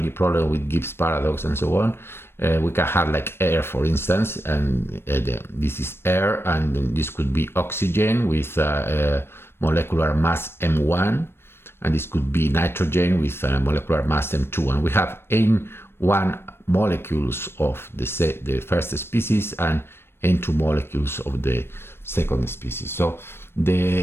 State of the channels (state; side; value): late; right; 0.12 ms